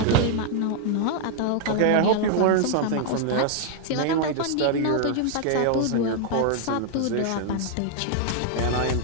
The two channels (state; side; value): different; both; correlation -0.01